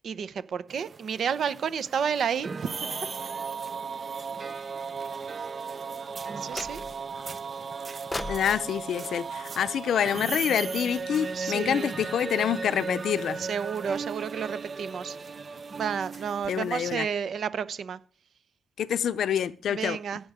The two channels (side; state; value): both; normal; correlation 0.69